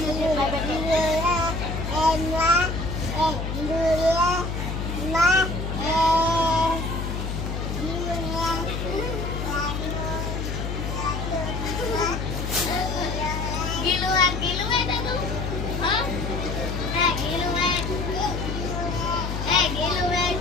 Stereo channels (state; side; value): noise; left; hum, 3 dB below the sound